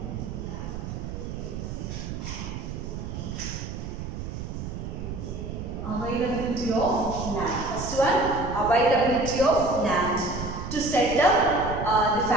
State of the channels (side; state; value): right; noise; rumble, 7 dB below the sound